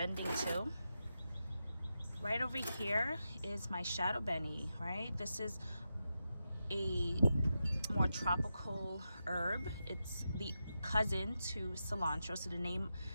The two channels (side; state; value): both; inverted; correlation -0.88